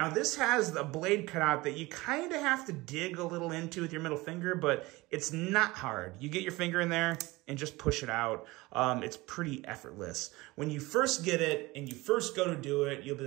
this has a blade cutout that you kind of have to dig a little into with your middle finger, but it's not hard. You get your finger in there and just push it out. It's pretty effortless. When you first get it and you first go to do it, you'll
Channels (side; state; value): left; quieter; 21.3 dB